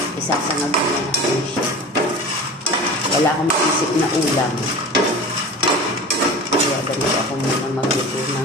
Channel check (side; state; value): both; normal; correlation 0.35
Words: isasangag ko na natin siya. Wala akong maisip na ulam. Kaya ganito ako muna magluto